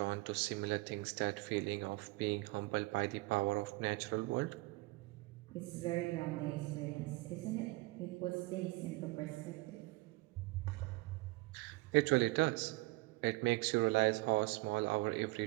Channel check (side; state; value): left; quieter; 22.5 dB